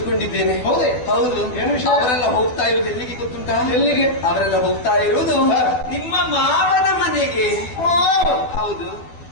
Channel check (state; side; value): late; right; 12 ms